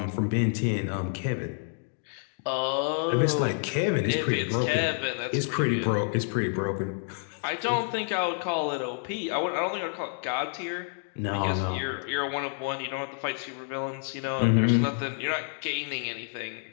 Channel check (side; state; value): right; silent; 59 dB below the other